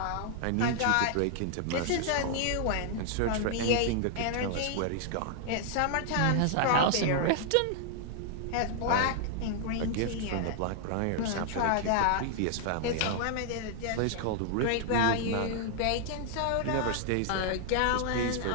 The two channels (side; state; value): both; different; correlation 0.00